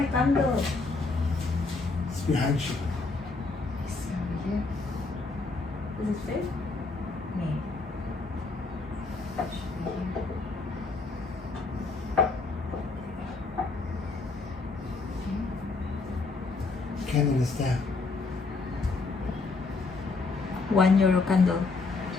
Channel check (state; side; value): quieter; right; 3.9 dB